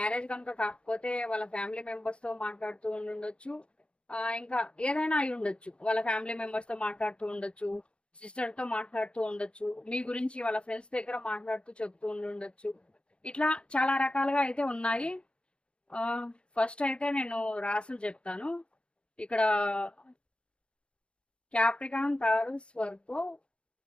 కనుక కాకపోతే వాళ్ళ ఫ్యామిలీ మెంబర్స్తో మాట్లాడుతూ ఉండొచ్చు, ఇంకా ఏదైనా అయి ఉండొచ్చు. వాళ్ళ ఫ్యామిలీ మెంబర్స్తో మాట్లాడుతూ ఉండొచ్చు, సిస్టర్తో మాట్లాడుతూ ఉండొచ్చు, మీ గురించి వాళ్ళ ఫ్రెండ్స్ దగ్గర మాట్లాడుతూ చెప్తూ ఉండొచ్చు. ఇట్లా చాలా రకాలుగా అయితే ఉన్నాయి. ఫస్ట్ అయితే నేను రాసులు చెప్తాను. ఇక్కడ క్యాప్రికాన్, తారస్, వర్గో,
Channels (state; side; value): late; right; 0.056 ms